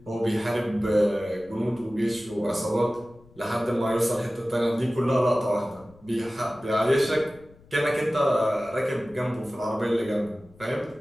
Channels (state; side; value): noise; left; rumble, 26 dB below the sound